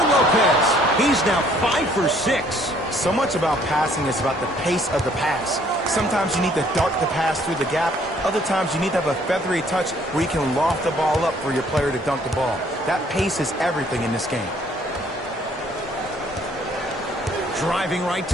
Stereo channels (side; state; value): both; normal; correlation 0.62